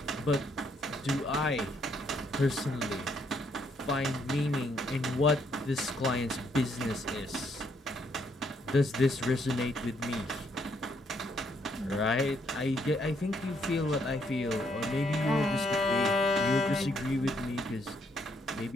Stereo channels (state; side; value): normal; both; correlation 0.71